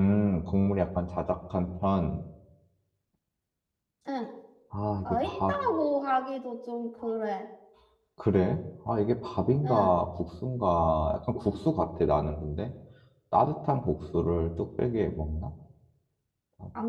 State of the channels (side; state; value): both; identical; correlation 1.00